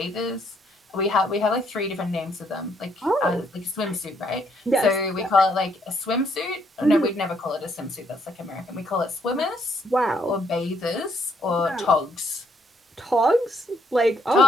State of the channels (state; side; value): normal; both; correlation 0.71